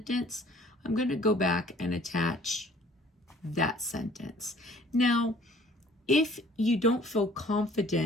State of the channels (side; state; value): both; normal; correlation 0.54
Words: I'm going to go back and attach that sentence. Now, if you don't feel